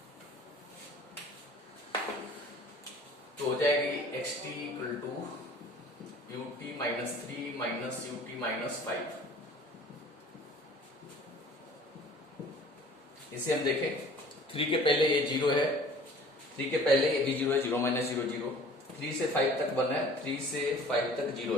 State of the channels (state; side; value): normal; both; correlation 0.48